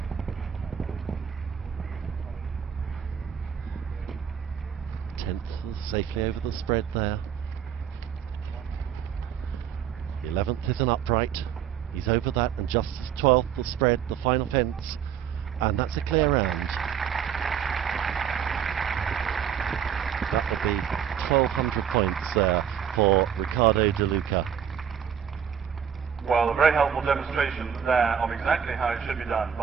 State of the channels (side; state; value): left; quieter; 8.4 dB